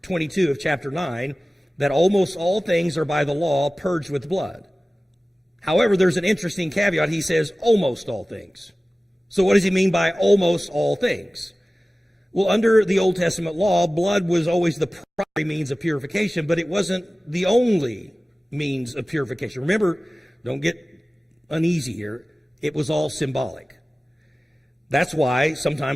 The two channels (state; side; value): normal; both; correlation 0.97